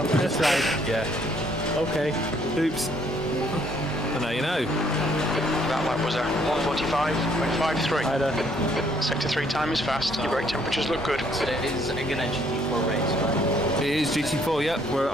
just like, yeah. Okay. Oops. And now you know. That lap was a 1:45.53. Either. Sector 3 time is fast. Your brake temperatures look good. So it is again a GT4 race, right? It is GT4, yep. We're at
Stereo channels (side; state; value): left; noise; hum, 21 dB below the sound